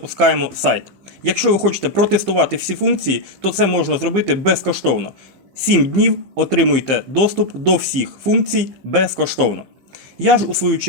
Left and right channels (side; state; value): left; late; 15 ms